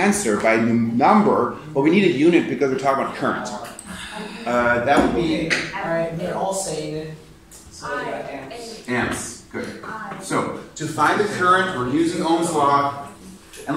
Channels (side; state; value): both; identical; correlation 1.00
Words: by number, but we need a unit because we're talking about current. That would be Alright, they're all saying it. So we got amps. amps. Good. So, to find the current, we're using Ohm's law. And